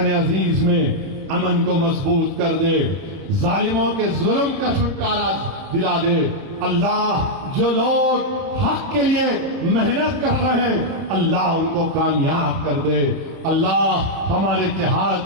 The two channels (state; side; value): late; left; 31 ms